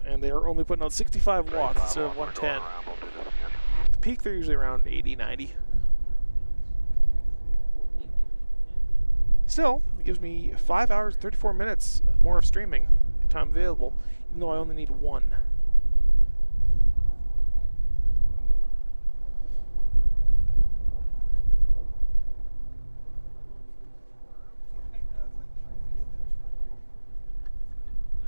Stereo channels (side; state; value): both; inverted; correlation -1.00